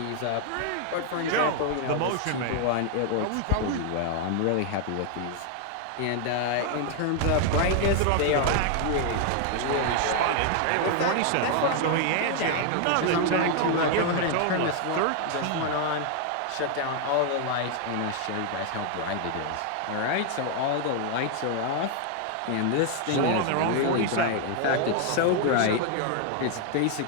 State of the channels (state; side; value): different; both; correlation 0.00